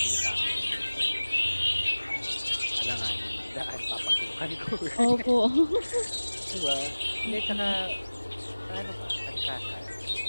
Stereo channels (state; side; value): inverted; both; correlation -1.00